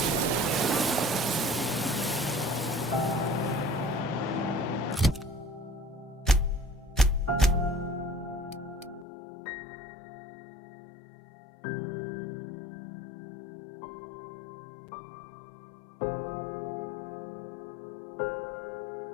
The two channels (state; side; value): drops out; right; at 9.1 s